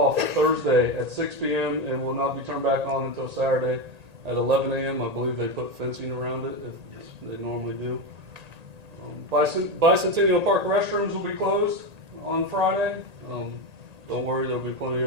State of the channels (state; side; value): late; left; 1.8 ms